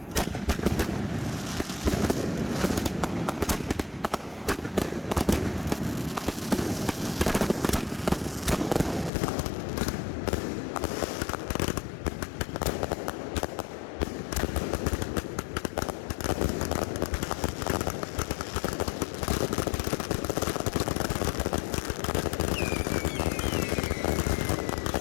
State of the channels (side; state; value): right; drops out; at 9.1 s